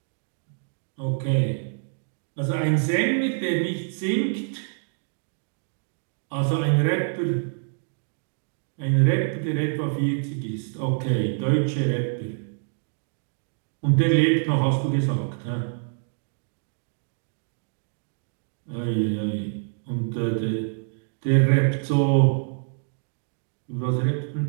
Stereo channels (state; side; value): silent; left; digital silence